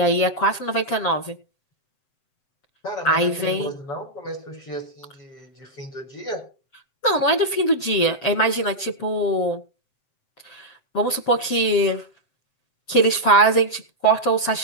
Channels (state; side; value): late; right; 7.8 ms